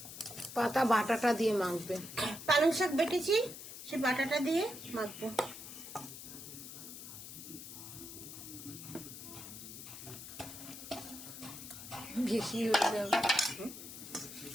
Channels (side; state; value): left; noise; hiss, 11 dB below the sound